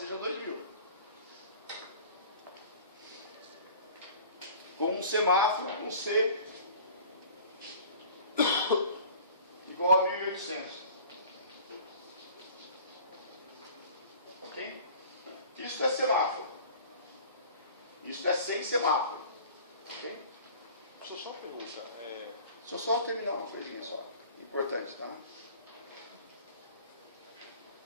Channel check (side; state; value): both; inverted; correlation -0.45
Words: 2.000. Com um semáforo com C igual a 1.800. Ok? Isso é semáforo. Isso é sem semáforo. Ok? Deixa eu só uma pergunta. Deixa eu só terminar uma coisinha só. Importante, tá?